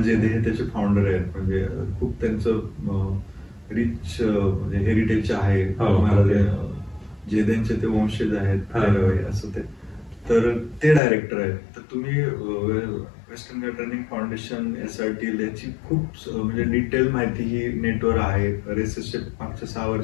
जेदे हे त्याचे फाउंडर आहेत. म्हणजे खूप त्यांचं रिच हेरिटेज आहे. जेदेंचे ते वंशज आहेत असं ते. तर ते डायरेक्टर आहेत. तर तुम्ही वेस्टर्न घाट रनिंग फाउंडेशन SRTL याची खूप म्हणजे डिटेल माहिती ही नेटवर आहे. रेसेसचे मागच्या 6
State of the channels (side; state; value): right; drops out; at 11.0 s